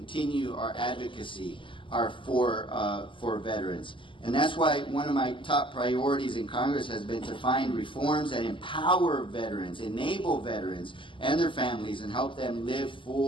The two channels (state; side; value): late; right; 0.25 ms